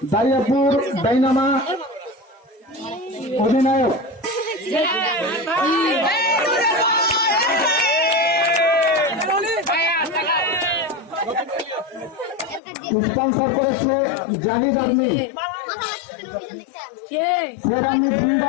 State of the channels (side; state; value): right; drops out; at 12.6 s